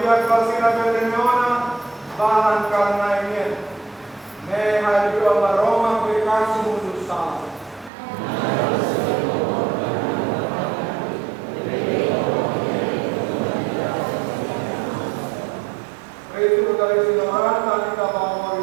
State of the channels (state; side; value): drops out; left; at 7.9 s